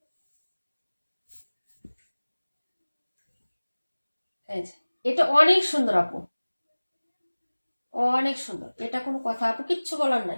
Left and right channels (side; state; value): both; inverted; correlation -1.00